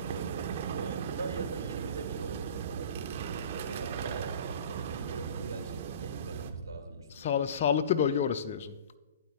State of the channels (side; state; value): both; inverted; correlation -0.40